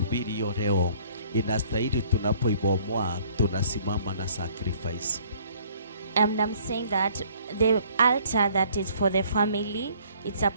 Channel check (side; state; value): both; inverted; correlation -0.58